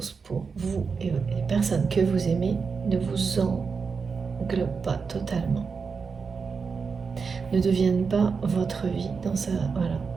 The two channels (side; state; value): left; quieter; 5.3 dB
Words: pour vous et les personnes que vous aimez ne vous englobe pas totalement, ne devienne pas votre vie